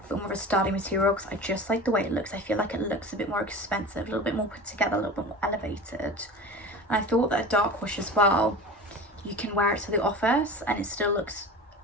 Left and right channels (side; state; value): both; normal; correlation 0.34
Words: but more of a sturdy material, because I just like the way it looks. I feel like it looks a bit more expensive, a little bit more put together, a little bit more elevated. And I thought that a dark wash as well, you can wear it to the office and it still looks